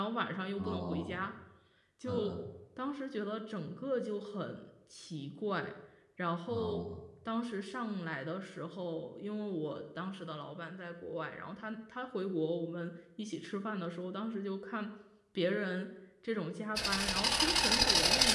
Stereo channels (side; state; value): both; identical; correlation 1.00